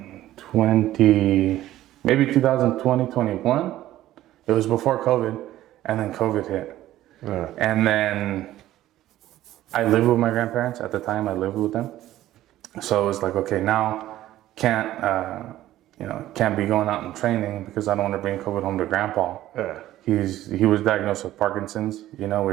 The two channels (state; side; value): quieter; left; 14.2 dB